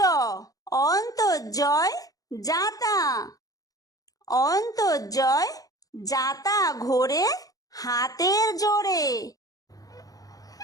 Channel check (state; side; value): late; right; 0.17 ms